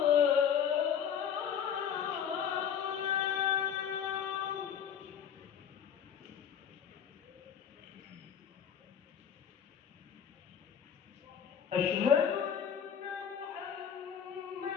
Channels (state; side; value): quieter; right; 8.2 dB